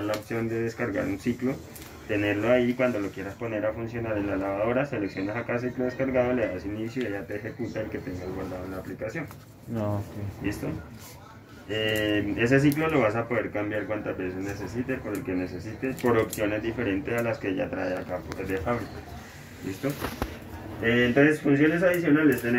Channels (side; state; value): both; identical; correlation 1.00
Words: la opción de descargar un ciclo, tenerlo ahí cuando lo quieras poner a funcionar en la lavadora, seleccionas acá ciclo descargado, le das inicio y ya te ejecuta el que tengas guardado en la aplicación. No, okay. ¿Listo? Ese ciclo lo vas a poder cambiar cuantas veces necesites, por el que necesites, por opciones diferentes a las que ya trae acá de fábrica. ¿Listo? Entonces, funciones adicionales